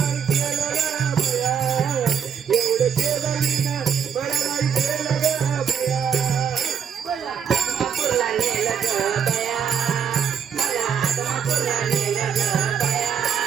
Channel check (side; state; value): left; quieter; 7.7 dB